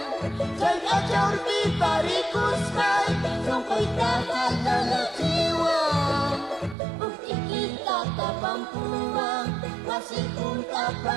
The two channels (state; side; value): drops out; left; at 6.8 s